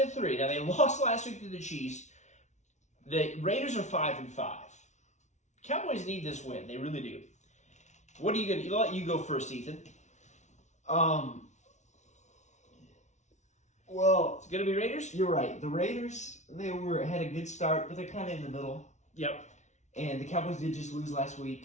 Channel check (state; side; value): late; right; 0.34 ms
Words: Now, they lost last week to the Chiefs. The Raiders are 5-5. Cowboys need this win. They really do. What are you going to... I'll let you go first, Ethan. Well, It's going to be Raiders? you're right. The Raiders, had a good start, but they're kind of in the middle. Yep. And the Cowboys did just lose last